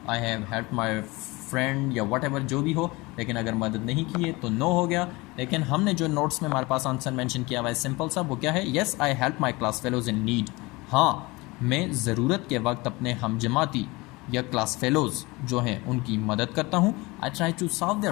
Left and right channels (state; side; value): quieter; right; 23.2 dB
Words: I have help my friend या वट एवर जो भी हो। लेकिन अगर मदद नहीं की है तो नो हो गया। लेकिन हमने जो नोट्स में हमारे पास आंसर मेंशन किया हुआ है सिंपल सा, वो क्या है, yes I help my class fellows in need. हाँ, मैं ज़रूरत के वक्त अपने हमजमाती या क्लास फेलोज़ जो हैं उनकी मदद करता हूँ। I try to solve